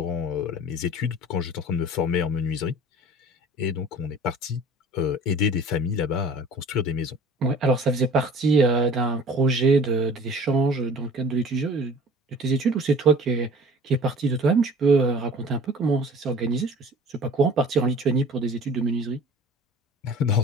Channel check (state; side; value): normal; both; correlation 0.45